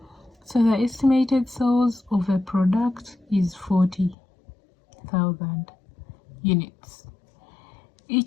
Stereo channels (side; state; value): right; drops out; at 4.2 s